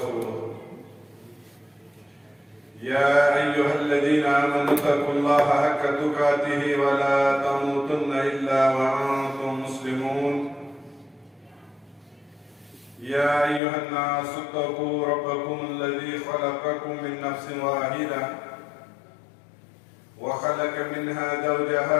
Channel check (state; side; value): drops out; right; at 13.6 s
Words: يا أيها الذين آمنوا اتقوا الله حق تقاته ولا تموتن إلا وأنتم مسلمون يا أيها الناس اتقوا ربكم الذي خلقكم من نفس واحدة وخلق منها